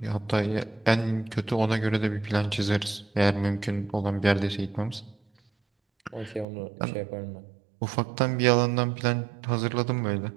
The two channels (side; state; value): left; drops out; at 6.5 s